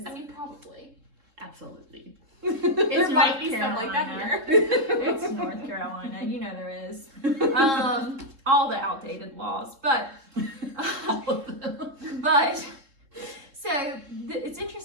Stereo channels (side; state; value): left; late; 3.7 ms